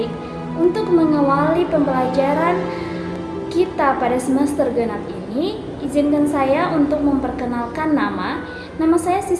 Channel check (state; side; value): identical; both; correlation 1.00